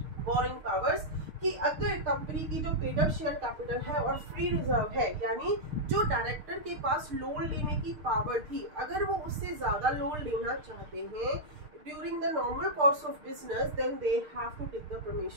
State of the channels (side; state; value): left; late; 6.6 ms